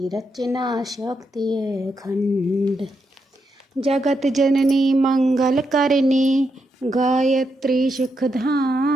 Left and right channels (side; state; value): both; normal; correlation 0.82